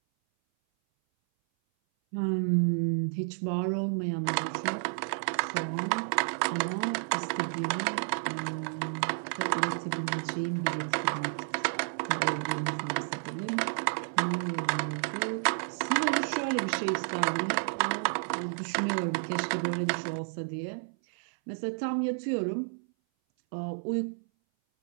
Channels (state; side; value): silent; left; 57 dB below the other